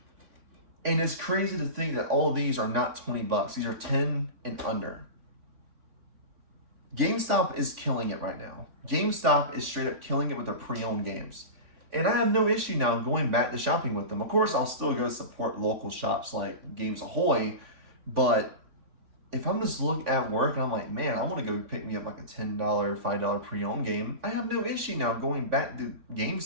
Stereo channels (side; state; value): left; late; 3.5 ms